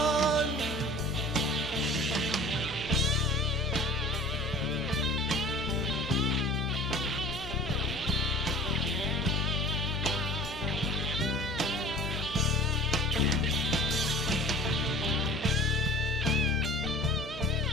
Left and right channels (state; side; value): noise; left; hum, 12 dB below the sound